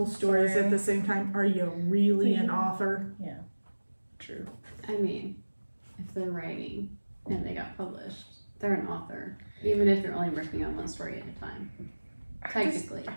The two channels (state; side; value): inverted; both; correlation -1.00